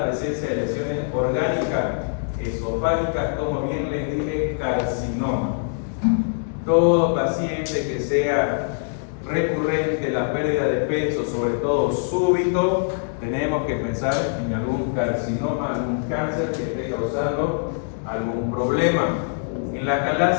presencia de lesiones orgánicas esofágicas, como bien les dije, carcinoma. Todo paciente que sea recurrente la pérdida de peso, sobre todo súbito, tenemos que pensar en algún carcinoma, algún cáncer que esté causando algún problema. En la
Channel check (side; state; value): right; silent; digital silence